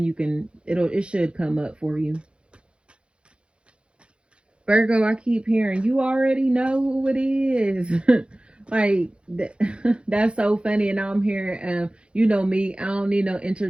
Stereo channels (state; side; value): late; left; 0.057 ms